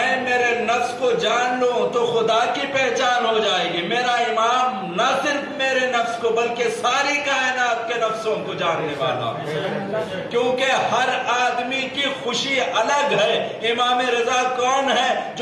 میرے نفس کو جان لوں تو خدا کی پہچان ہو جائے گی۔ میرا امام نہ صرف میرے نفس کو بلکہ ساری کائنات کے نفسوں کو جاننے والا، کیونکہ ہر آدمی کی خوشی الگ ہے۔ امام رضا کون ہے؟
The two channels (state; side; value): identical; both; correlation 1.00